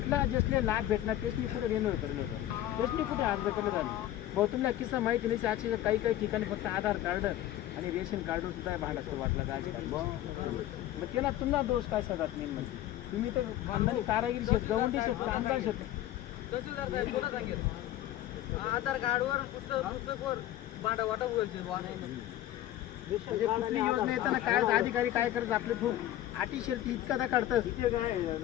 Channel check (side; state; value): right; quieter; 13.5 dB